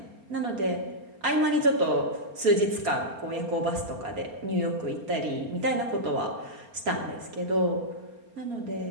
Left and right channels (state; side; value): late; left; 4.3 ms